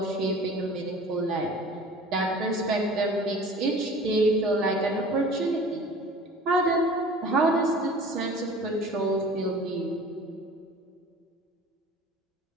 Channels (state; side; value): normal; both; correlation 0.44